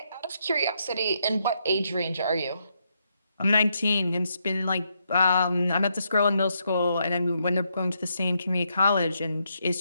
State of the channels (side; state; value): both; inverted; correlation -0.78